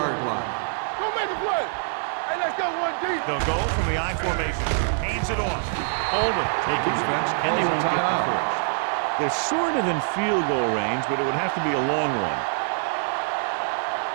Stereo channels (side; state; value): left; silent; digital silence